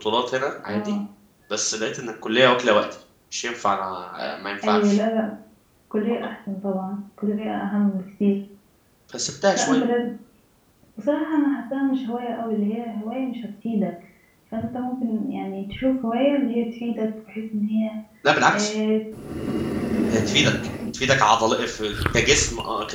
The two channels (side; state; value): both; identical; correlation 1.00